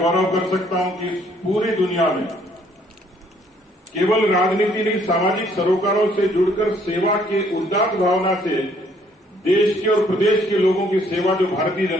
कर सकता हूं कि इस पूरी दुनिया में केवल राजनीति नहीं, सामाजिक सरोकारों से जुड़कर सेवा के उदात्त भावना से देश के और प्रदेश के लोगों की सेवा जो भारतीय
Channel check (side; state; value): both; normal; correlation 0.64